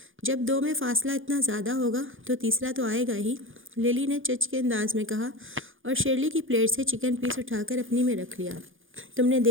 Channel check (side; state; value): left; late; 0.58 ms